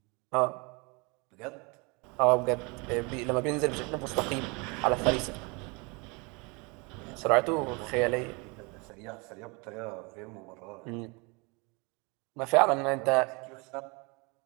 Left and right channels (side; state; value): left; quieter; 29.1 dB